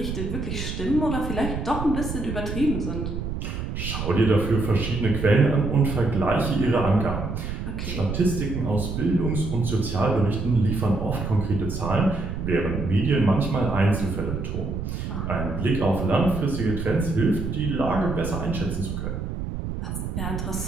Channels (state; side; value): noise; right; rumble, 4 dB below the sound